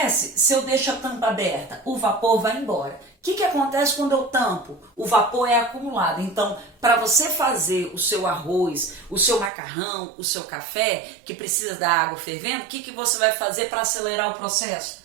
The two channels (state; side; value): drops out; left; at 9.5 s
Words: se eu deixo a tampa aberta? O vapor vai embora. O que acontece quando eu tampo? O vapor é acumulado. Então, para você fazer o seu arroz, o seu macarrão, o seu café, que precisa da água fervendo, o que você vai fazer para acelerar o processo?